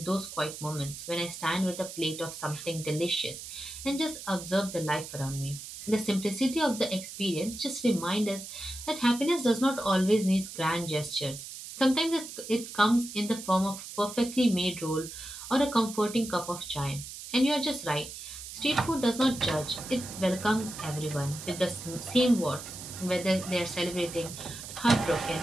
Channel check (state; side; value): noise; right; hiss, 11 dB below the sound